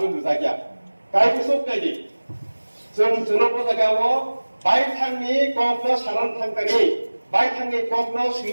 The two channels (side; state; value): both; inverted; correlation -1.00